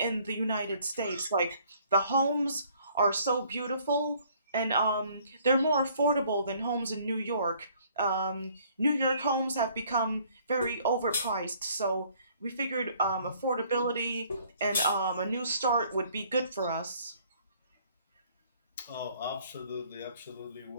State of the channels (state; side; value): inverted; both; correlation -0.61